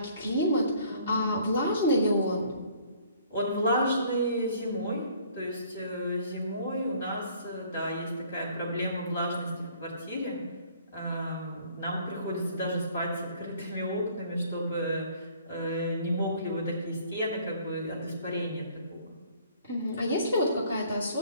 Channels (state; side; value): inverted; both; correlation -0.57